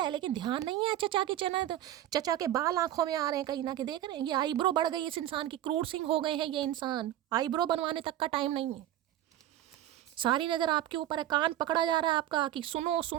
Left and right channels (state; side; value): quieter; left; 12.7 dB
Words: लेकिन ध्यान नहीं है। चचा की चचा के बाल आंखों में आ रहे हैं कहीं ना कहीं, देख रहे हैं। ये आईब्रो बढ़ गई इस इंसान की, क्रूर सिंह हो गए हैं ये इंसान, आईब्रो बनवाने तक का टाइम नहीं है। सारी नजर आपके ऊपर है, कान पकड़ा जा रहा है आपका कि सुनो